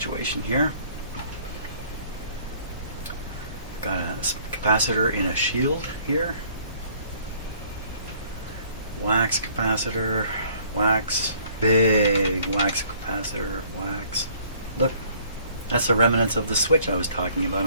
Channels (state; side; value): inverted; both; correlation -0.59